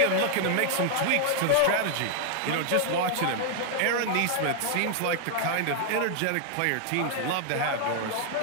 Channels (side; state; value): both; different; correlation 0.00